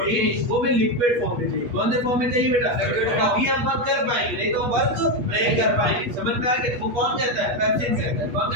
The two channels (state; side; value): late; left; 8.3 ms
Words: वो हमें लिक्विड फॉर्म में चाहिए। कौन से फॉर्म में चाहिए बेटा? तभी हम वर्क कर पाएंगे, नहीं तो वर्क नहीं कर पाएंगे। समझ में आ गया? वो कौन कहता है? पेप्सिन कहता है। कौन